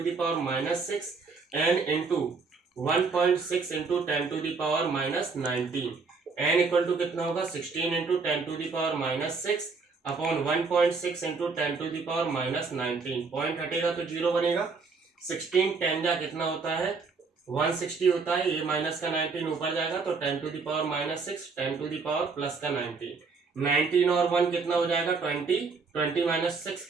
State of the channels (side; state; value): left; quieter; 4.6 dB